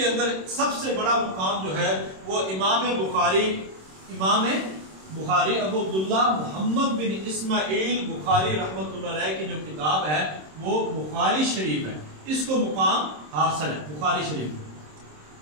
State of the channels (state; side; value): late; left; 26 ms